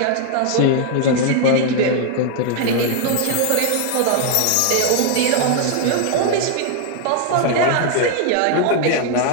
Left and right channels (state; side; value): different; both; correlation 0.00